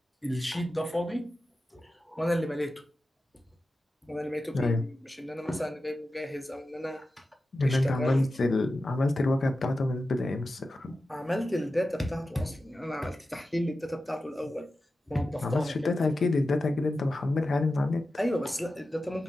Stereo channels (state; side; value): normal; both; correlation 0.93